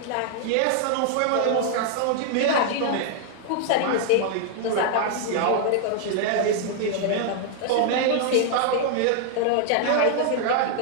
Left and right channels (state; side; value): different; both; correlation 0.00